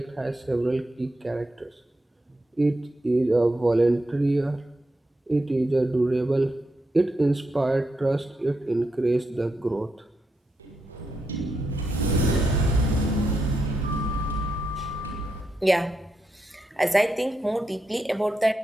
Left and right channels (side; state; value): both; normal; correlation 0.84